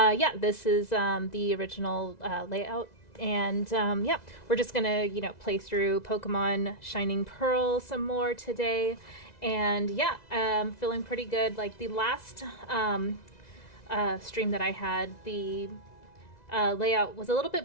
this is the original layout. And yeah, we're just gonna, play through Pokemon Shining Pearl some more today. And yeah, feeling pretty good. Like the last stream that I had, the layout was a little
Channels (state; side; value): late; right; 2.0 ms